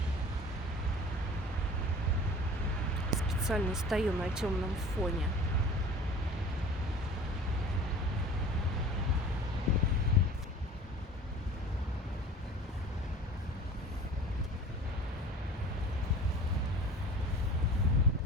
Специально стою на темном фоне.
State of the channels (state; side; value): normal; both; correlation 0.42